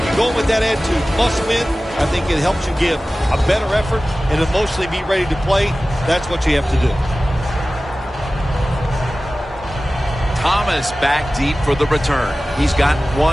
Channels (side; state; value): both; normal; correlation 0.96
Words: you go with that attitude, must win, I think it helps you give a better effort and emotionally be ready to play. That's what you have to do. Thomas back deep for the return. He's got